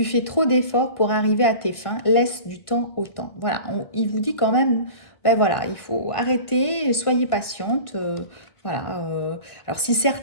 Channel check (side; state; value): right; late; 1.5 ms